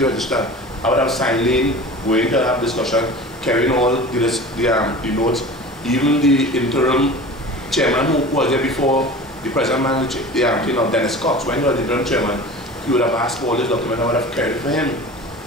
register, I would have signed in, going to have discussion, carrying all the notes. Even the interim chairman who was there before the present manager, Dennis Cox, when he was the interim chairman, he would have asked for all this document, I would have carried it for him.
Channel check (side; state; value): both; normal; correlation 0.37